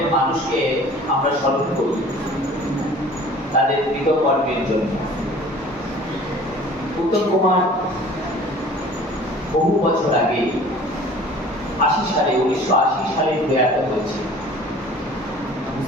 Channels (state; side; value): normal; both; correlation 0.47